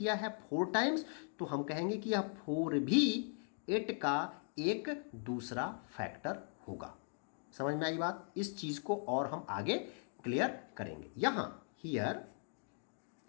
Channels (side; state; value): right; silent; 52 dB below the other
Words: है 4 टाइम्स, तो हम कहेंगे कि यह 4 भी 8 का एक दूसरा फैक्टर होगा। समझ में आई बात? इस चीज को और हम आगे क्लियर करेंगे। यहां